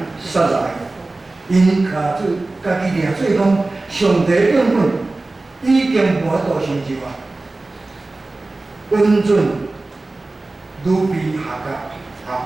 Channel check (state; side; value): quieter; left; 3.1 dB